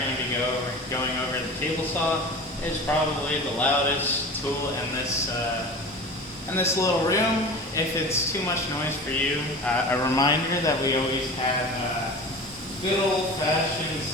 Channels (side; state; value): both; normal; correlation 0.35